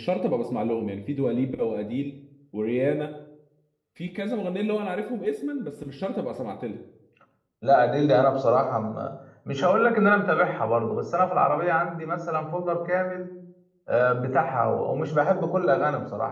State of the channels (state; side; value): identical; both; correlation 1.00